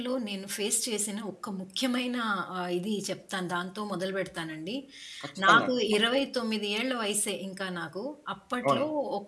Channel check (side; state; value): both; identical; correlation 1.00